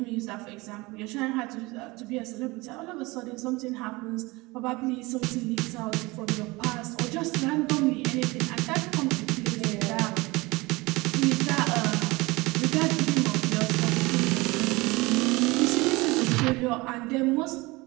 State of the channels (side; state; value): left; quieter; 22.8 dB